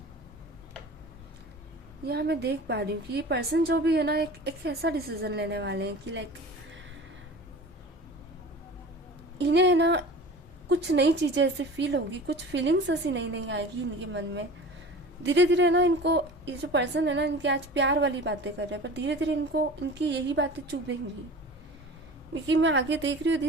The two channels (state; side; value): normal; both; correlation 0.38